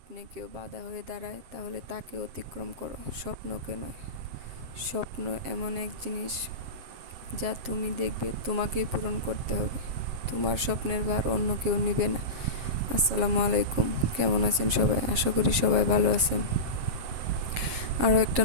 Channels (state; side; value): late; left; 7.7 ms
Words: কেউ বাধা হয়ে দাঁড়ায় তাহলে তাকে অতিক্রম করো, স্বপ্নকে নয়। স্বপ্ন এমন এক জিনিস যা তুমি দেখবে তোমাকেই পূরণ করতে হবে। তোমার স্বপ্নের ভার অন্য কেউ নিবে না। আসসালামু আলাইকুম, কেমন আছেন সবাই? আশা করি সবাই ভালো আছেন। আরও একটা